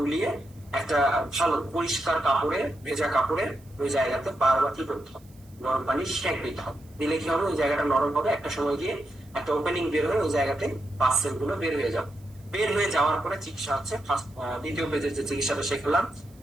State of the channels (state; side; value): noise; right; hiss, 29 dB below the sound